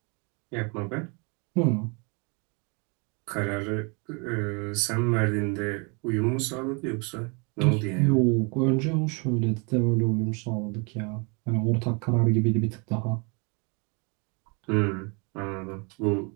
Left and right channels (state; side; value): quieter; left; 32.3 dB